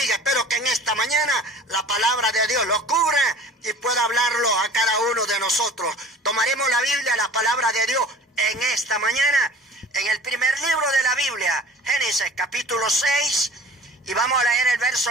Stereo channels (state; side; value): normal; both; correlation 0.44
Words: Espero que en esta mañana la palabra de Dios lo cubra y pueda hablarlo a cada uno de nosotros. Tomaremos la Biblia, la palabra de Dios, en esta mañana, en el primer libro de la Biblia, Génesis capítulo 6, y vamos a leer el